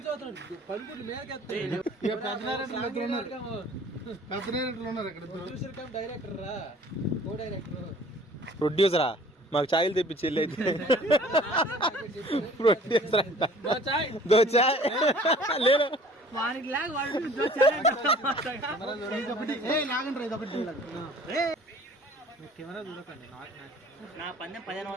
చూస్తున్నాడు పడుకుంటు మేరకెత్తాయి డైరెక్టర్ రా కో డైరెక్టర్ ప్రొడ్యూసరా మాకు ఛాయలు తెప్పించి వెళ్ళి అయితే ప్రొడ్యూసర్ అంట దో చాయ్ లేదు కెమెరా చూడకండి. నా పందెం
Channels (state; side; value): normal; both; correlation 0.50